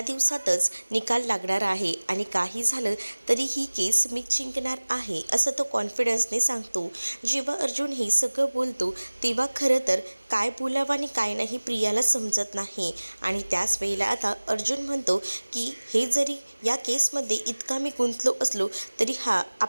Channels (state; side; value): inverted; both; correlation -1.00